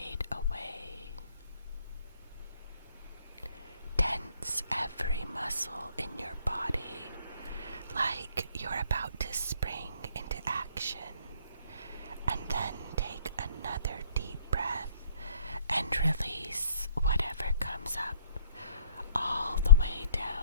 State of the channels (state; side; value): inverted; both; correlation -0.58